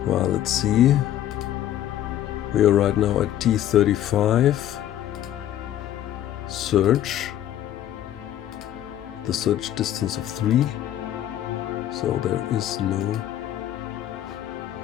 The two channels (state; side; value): quieter; right; 11.9 dB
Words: Well, let's see. We are right now at T35. Search. The search distance of 3. So there is